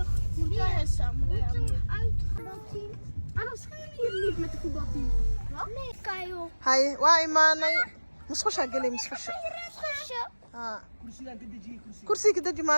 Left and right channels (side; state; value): both; inverted; correlation -1.00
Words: Wie is samen? Anders gaan we hier niet met de voetbalteam. Wat? Nee, Kajo. هاي وإيماني مسخوشة قلي مسخوشة كرسي كده